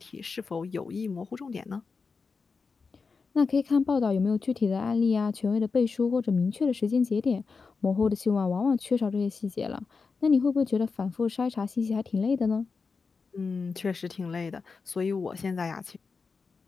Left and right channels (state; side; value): quieter; right; 4.8 dB